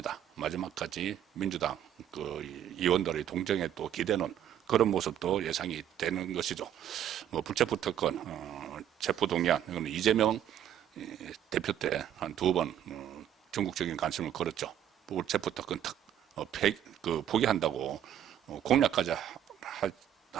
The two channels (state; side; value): quieter; left; 10.4 dB